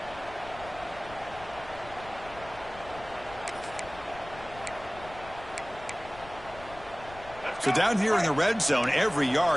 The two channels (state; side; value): noise; left; rumble, 17 dB below the sound